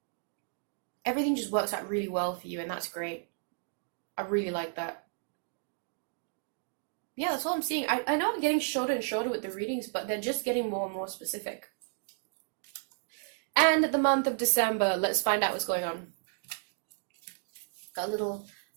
Everything just works out really well for you, and that's great. I really like that. Yeah, that's what I'm seeing. I know I'm getting shorter and shorter with the readings, but they're just getting more and more specific. And the month of December, let's find out what's going on. Got a little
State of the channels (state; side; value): silent; left; digital silence